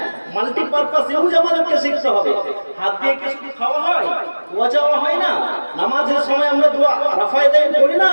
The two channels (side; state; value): both; inverted; correlation -1.00